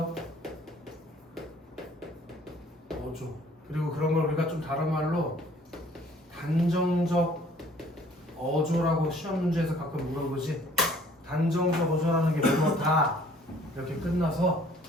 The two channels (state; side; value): normal; both; correlation 0.57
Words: 어조, 그리고 그런 걸 우리가 좀 다른 말로 단정적 어조라고 시험 문제에서 가끔 물어보지. 단정적 어조라는 게 뭐뭐 다 이렇게 끝나서